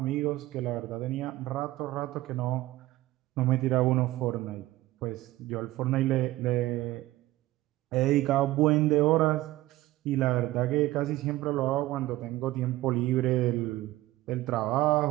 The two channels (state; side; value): quieter; left; 17.0 dB